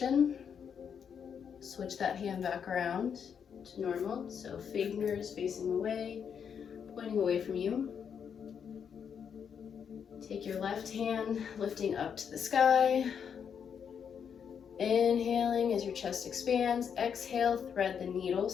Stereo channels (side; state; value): right; quieter; 7.4 dB